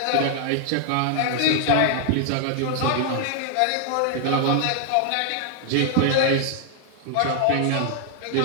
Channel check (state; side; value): different; both; correlation 0.00